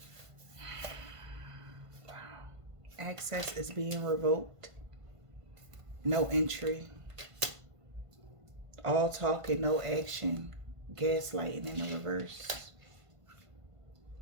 Access is being revoked. No entry. All talk and no action. Gaslighting in the reverse.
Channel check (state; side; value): late; left; 1.5 ms